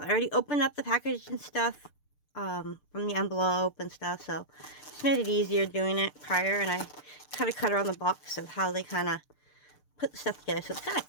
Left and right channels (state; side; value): late; right; 6.7 ms